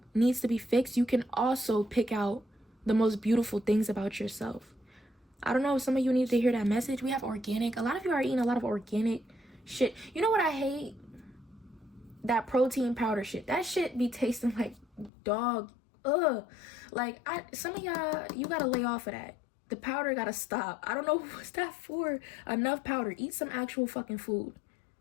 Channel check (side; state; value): right; drops out; at 15.1 s